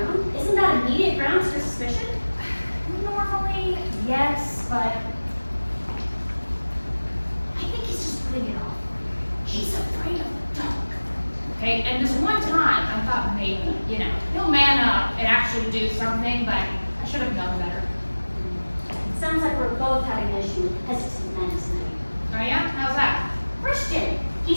room? Isn't that immediate grounds for suspicion? Normally, yes, but I think he's just putting it off. He's afraid of the dark. Okay, and this one time, I thought maybe, he'll man up and actually do something, but I should have known better. Sounds like we're both having an issue with hesitant men tonight. Oh yeah? How's that? Christian,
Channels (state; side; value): inverted; both; correlation -1.00